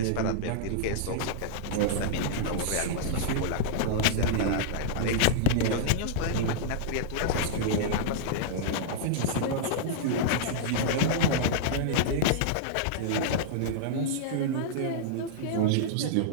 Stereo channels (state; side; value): different; both; correlation -0.02